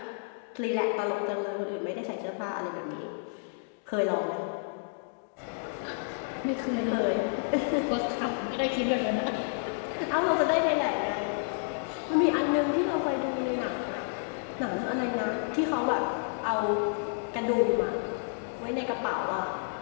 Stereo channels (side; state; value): right; silent; digital silence